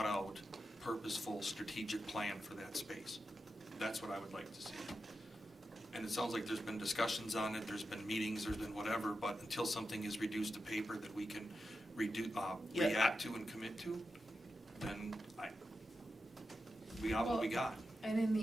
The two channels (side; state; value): both; normal; correlation 0.89